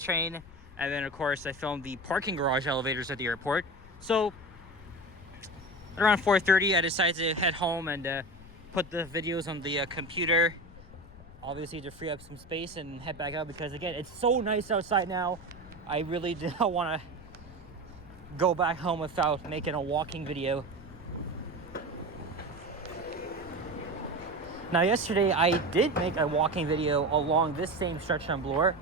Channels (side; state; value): left; noise; rumble, 19 dB below the sound